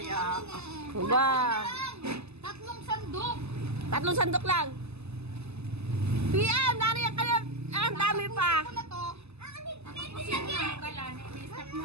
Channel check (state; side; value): late; left; 0.80 ms